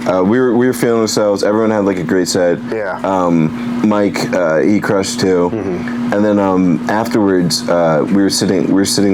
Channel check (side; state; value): right; noise; hum, 30 dB below the sound